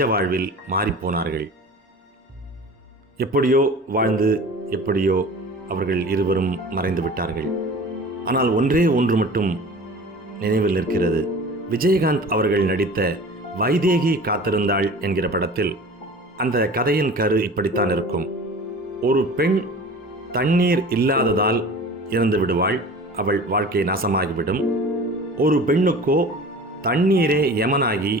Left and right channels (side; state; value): both; normal; correlation 0.40